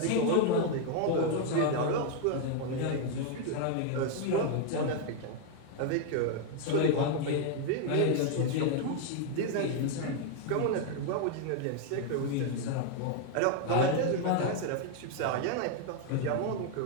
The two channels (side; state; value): both; different; correlation 0.00